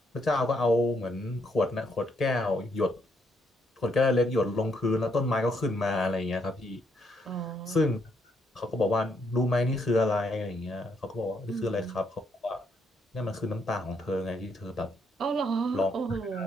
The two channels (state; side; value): normal; both; correlation 0.74